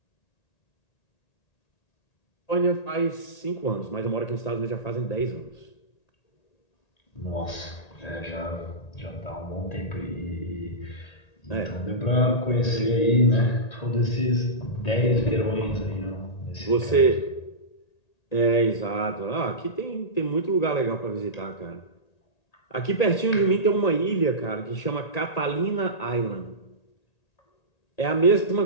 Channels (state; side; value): late; right; 1.8 ms